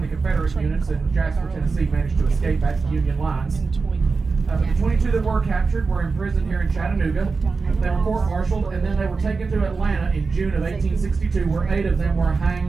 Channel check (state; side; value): quieter; left; 4.4 dB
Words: the Confederate units in Jasper, Tennessee managed to escape back to the Union lines. The 22 that were captured were imprisoned here in Chattanooga. They were court-martialed, and then they were taken to Atlanta in June of 1862, where 8 of them were